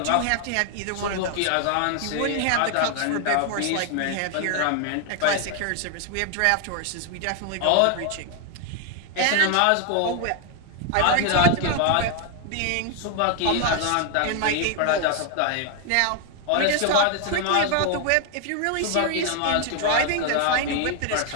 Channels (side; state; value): both; different; correlation 0.00